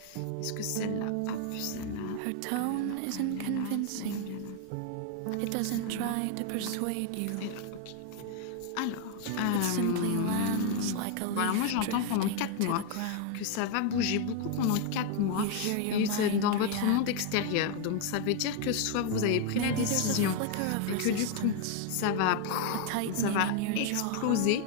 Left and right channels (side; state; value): both; different; correlation 0.01